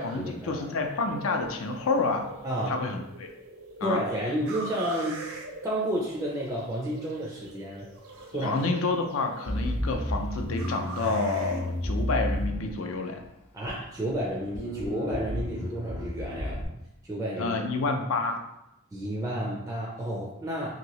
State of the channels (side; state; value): both; normal; correlation 0.32